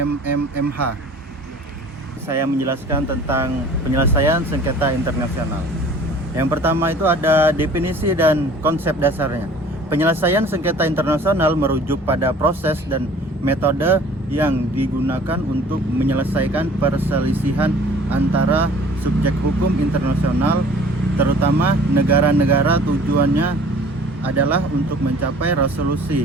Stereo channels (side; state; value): both; normal; correlation 0.49